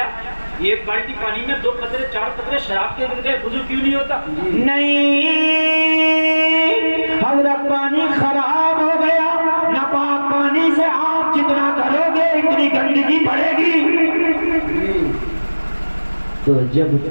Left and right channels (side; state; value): both; inverted; correlation -1.00